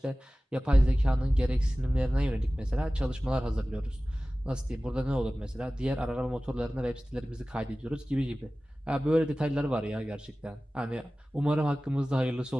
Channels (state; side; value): normal; both; correlation 0.97